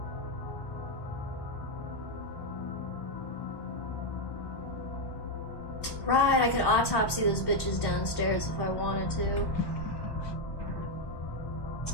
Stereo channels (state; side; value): late; right; 1.1 ms